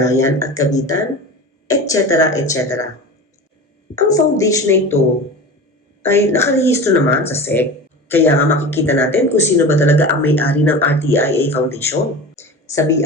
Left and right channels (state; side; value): normal; both; correlation 0.32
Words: at kabitan, etc. etc. Ang foundation na ito ay nakarehistro naman sa SEC, kaya nga makikita natin kung sino ba talaga ang may-ari ng RTIA Foundation. Sa